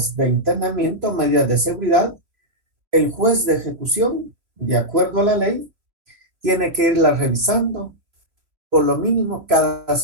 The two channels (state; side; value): late; left; 3.1 ms